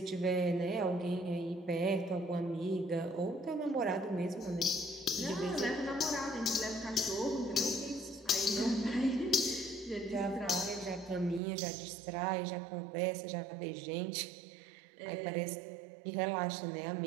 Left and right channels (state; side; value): drops out; left; at 11.4 s